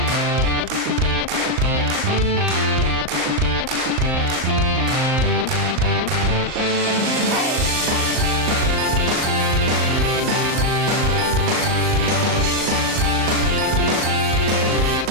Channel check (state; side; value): late; left; 38 ms